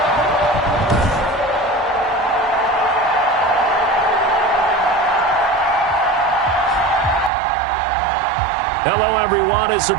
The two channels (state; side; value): drops out; left; at 7.3 s